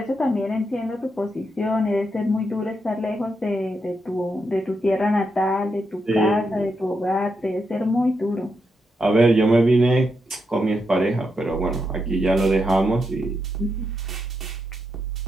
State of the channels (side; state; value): both; normal; correlation 0.83